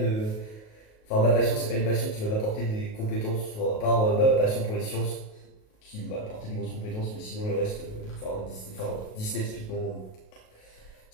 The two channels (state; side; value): late; right; 37 ms